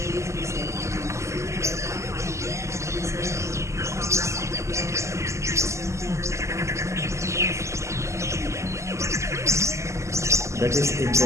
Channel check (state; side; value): late; left; 0.14 ms